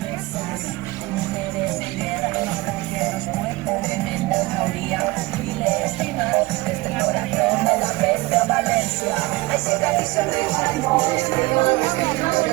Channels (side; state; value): left; quieter; 21.7 dB